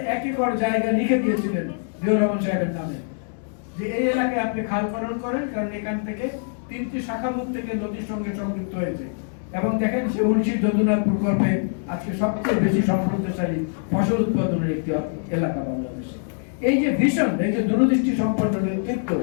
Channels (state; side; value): silent; right; digital silence